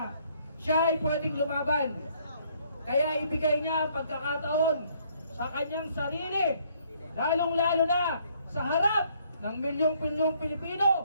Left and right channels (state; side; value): inverted; both; correlation -0.66